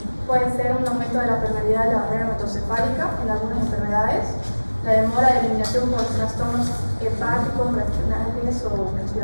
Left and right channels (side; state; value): both; inverted; correlation -1.00